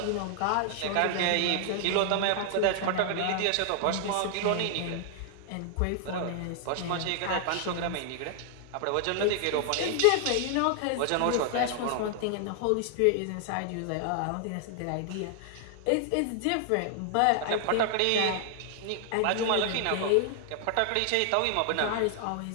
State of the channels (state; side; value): different; both; correlation 0.00